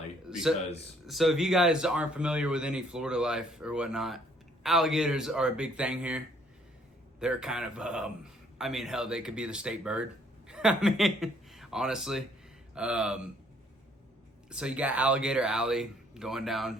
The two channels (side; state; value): both; normal; correlation 0.64